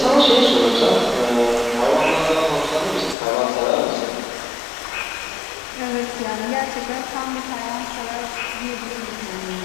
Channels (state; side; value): drops out; right; at 3.2 s